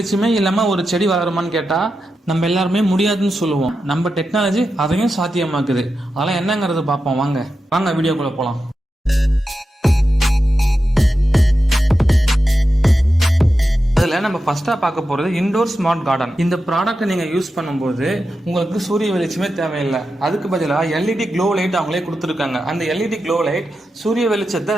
இல்லாமல் ஒரு செடி வளருமான்னு கேட்டால் நம்ம எல்லாருமே முடியாதுன்னு சொல்லுவோம். நம்ம டெக்னாலஜி அதையும் சாத்தியமாக்குது. அதெல்லாம் என்னங்கிறது பார்ப்போம். வாங்க வீடியோக்குள்ளே போகலாம். அதில் நம்ம ஃபர்ஸ்டா பார்க்க போறது இன்டோர் ஸ்மார்ட் கார்டன். இந்த ப்ராடக்ட் நீங்க யூஸ் பண்ணும்போது உங்களுக்கு சூரிய வெளிச்சமே தேவையில்லை. அதுக்கு பதிலாக எல்இடி க்ளோ லைட் அவங்களே கொடுத்துருக்காங்க. அந்த எல்இடி க்ளோ லைட் சூரிய வெளிச்சத்தை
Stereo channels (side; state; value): both; normal; correlation 0.90